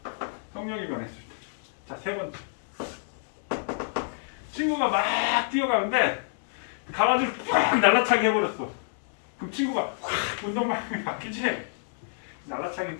속력이 변했을 때. 자, 세 번째. 친구가 막 뛰어가는데 가로지를 팍 날라차게 해버렸어. 그럼 친구가 확 운동방향이 바뀌지? 날라차기는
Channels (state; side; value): silent; right; 59 dB below the other